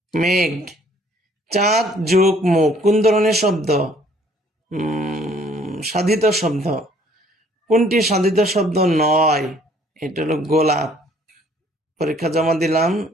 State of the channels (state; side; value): normal; both; correlation 0.60